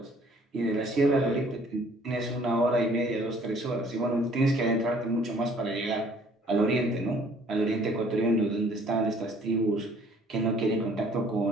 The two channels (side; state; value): both; normal; correlation 0.58